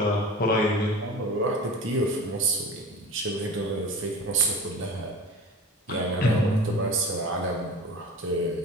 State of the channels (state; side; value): normal; both; correlation 0.35